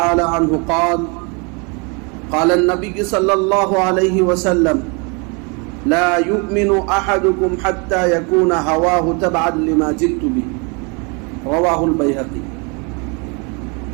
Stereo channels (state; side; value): quieter; left; 32.3 dB